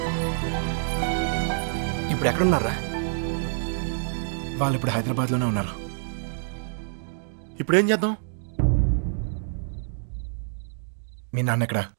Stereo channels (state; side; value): silent; left; digital silence